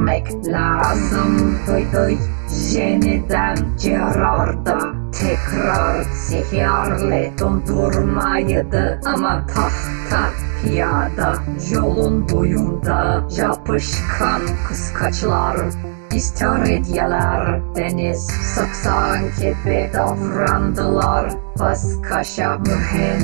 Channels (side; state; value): left; silent; digital silence